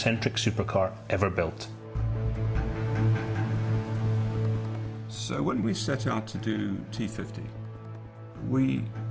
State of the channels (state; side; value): identical; both; correlation 1.00